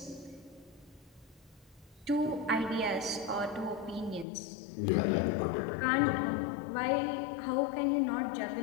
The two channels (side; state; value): right; drops out; at 4.2 s